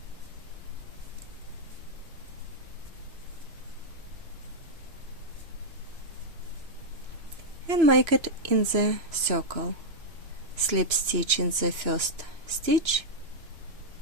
And make it in the circle. Slip stitch in the first stitch,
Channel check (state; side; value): late; left; 2.9 ms